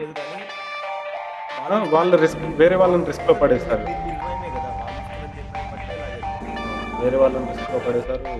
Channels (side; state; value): both; identical; correlation 1.00